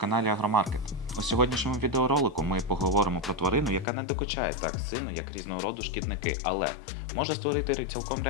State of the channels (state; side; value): drops out; right; at 3.9 s